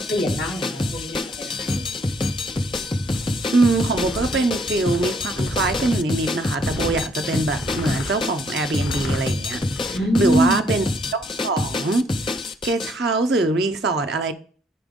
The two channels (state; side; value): normal; both; correlation 0.67